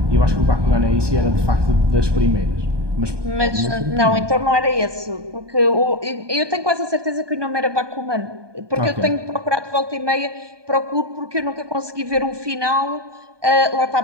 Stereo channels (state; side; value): late; left; 1.2 ms